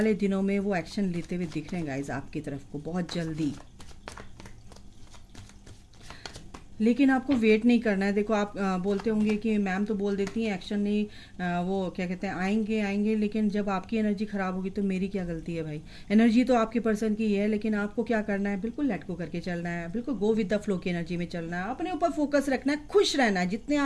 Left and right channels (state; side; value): identical; both; correlation 1.00